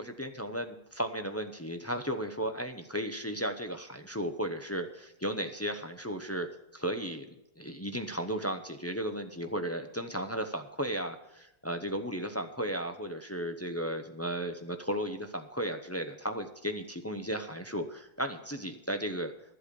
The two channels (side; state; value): both; normal; correlation -0.15